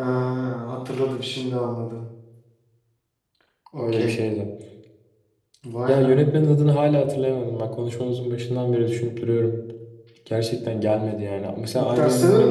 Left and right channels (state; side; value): identical; both; correlation 1.00